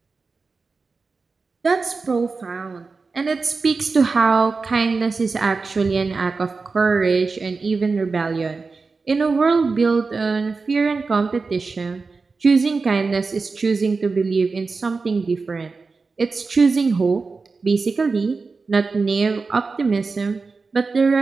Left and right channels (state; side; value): quieter; left; 4.3 dB